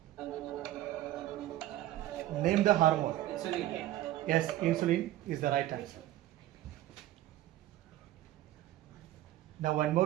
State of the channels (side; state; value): left; quieter; 14.4 dB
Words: Name the hormone. Insulin. Yes, insulin is the right answer. Now one